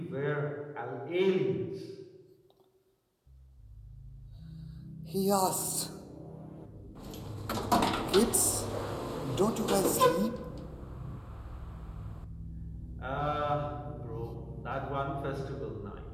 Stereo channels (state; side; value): identical; both; correlation 1.00